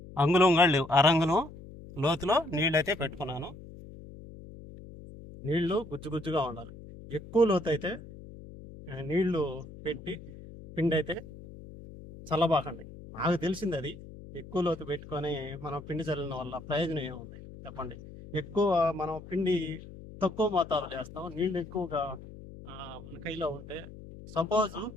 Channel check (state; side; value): noise; left; hum, 16 dB below the sound